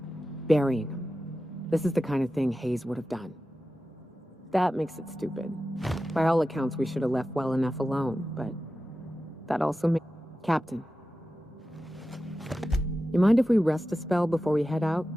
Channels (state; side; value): normal; both; correlation 0.93